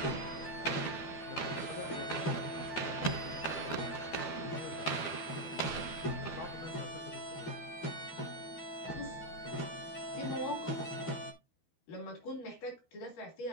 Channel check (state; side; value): late; right; 12 ms